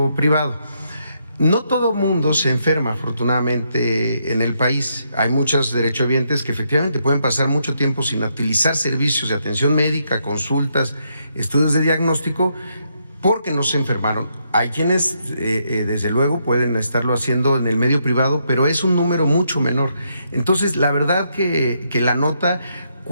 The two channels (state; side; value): inverted; both; correlation -0.77